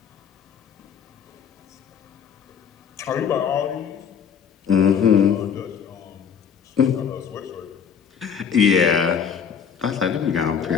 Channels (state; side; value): quieter; right; 7.2 dB